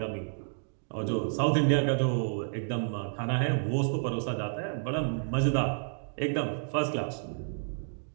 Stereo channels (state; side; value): silent; left; digital silence